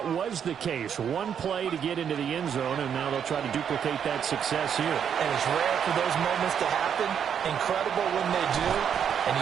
was the case. One play to get into the end zone, and now they'll try to duplicate that success here. And it's rare for those moments to happen. Incredible when they do. And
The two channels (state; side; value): quieter; left; 8.1 dB